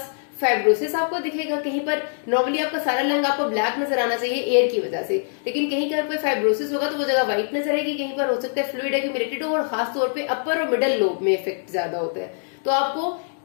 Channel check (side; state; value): right; silent; 63 dB below the other